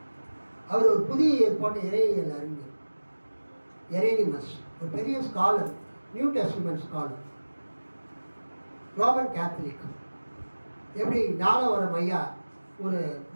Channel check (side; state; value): both; inverted; correlation -1.00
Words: அவர் ஒரு புதிய ஏற்பாடு இறையியல் அறிஞர். எரேனிமஸ் ஒரு பெரிய scholar, new testament scholar, Roman Catholic. எப்படி ஞானவரம் ஐயா ஒரு